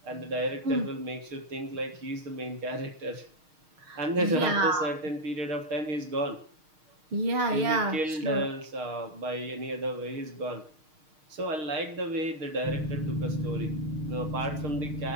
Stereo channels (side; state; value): left; late; 6.5 ms